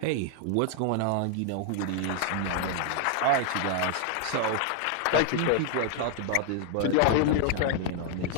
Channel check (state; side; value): different; both; correlation 0.00